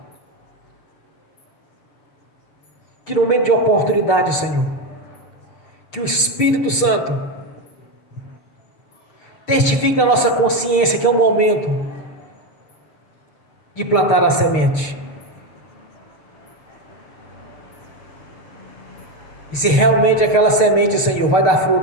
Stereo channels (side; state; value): right; late; 6.6 ms